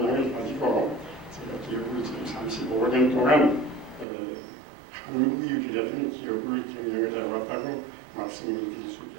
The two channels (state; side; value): drops out; left; at 4.0 s